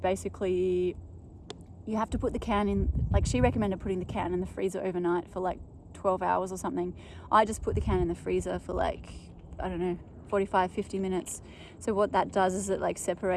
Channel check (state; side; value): identical; both; correlation 1.00